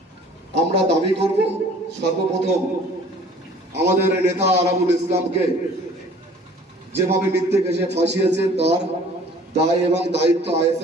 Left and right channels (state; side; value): normal; both; correlation 0.51